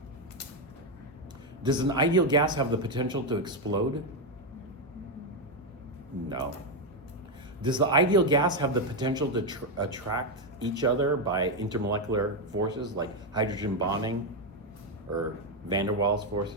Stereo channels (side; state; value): both; normal; correlation 0.05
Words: Does an ideal gas have the potential to explode? No. Does the ideal gas have the potential to attract each other by intermolecular forces like hydrogen bonding or van der Waals